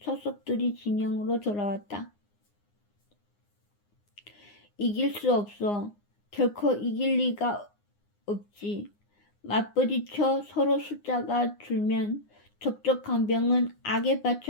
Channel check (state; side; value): late; right; 9.7 ms